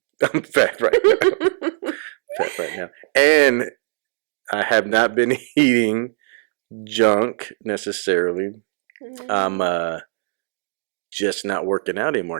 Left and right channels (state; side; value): silent; left; digital silence